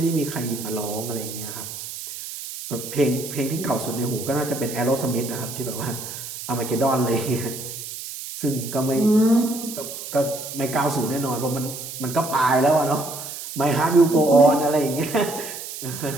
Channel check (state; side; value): noise; right; hiss, 9 dB below the sound